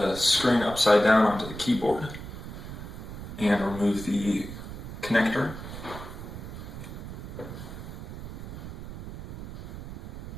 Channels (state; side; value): noise; right; rumble, 10 dB below the sound